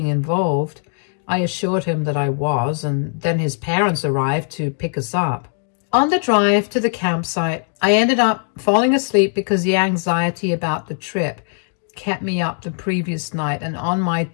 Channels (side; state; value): right; silent; 58 dB below the other